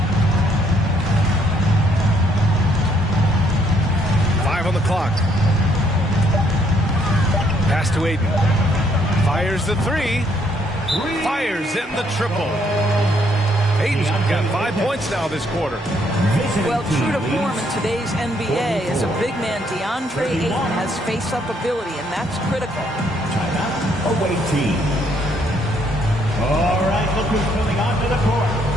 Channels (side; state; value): both; normal; correlation 0.69